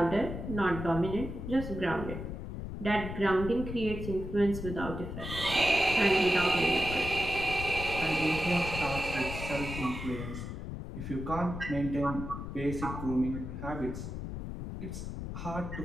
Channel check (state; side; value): noise; left; rumble, 7 dB below the sound